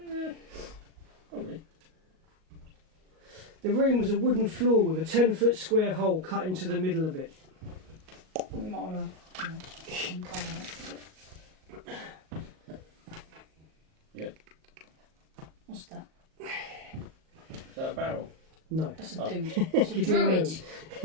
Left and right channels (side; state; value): left; late; 38 ms